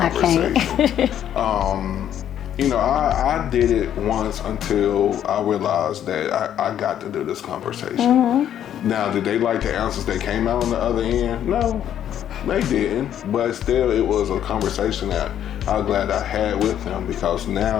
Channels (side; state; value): right; quieter; 10.3 dB